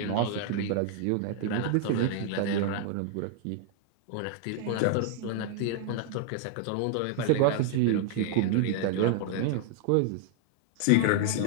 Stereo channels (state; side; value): different; both; correlation 0.00